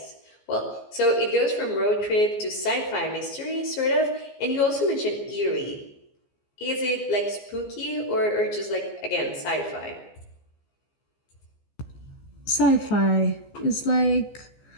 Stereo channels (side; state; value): right; late; 14 ms